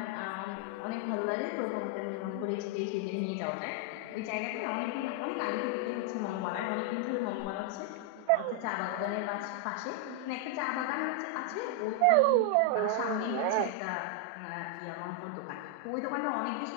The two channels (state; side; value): different; both; correlation 0.00